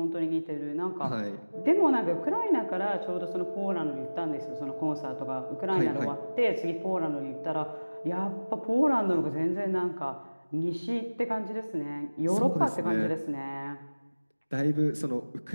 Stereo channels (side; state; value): both; inverted; correlation -1.00